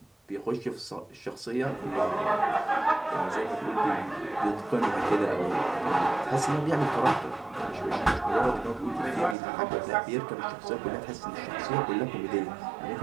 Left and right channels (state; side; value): drops out; left; at 9.3 s